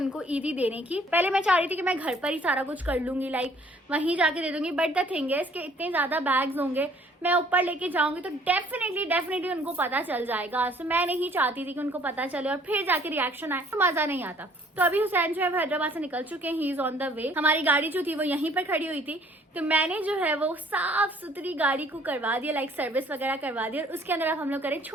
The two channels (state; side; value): normal; both; correlation 0.58